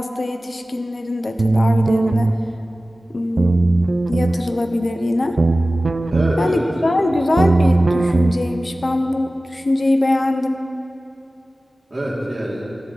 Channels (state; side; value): normal; both; correlation 0.96